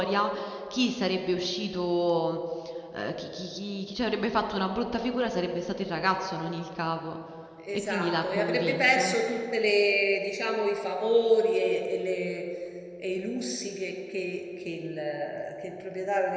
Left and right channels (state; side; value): identical; both; correlation 1.00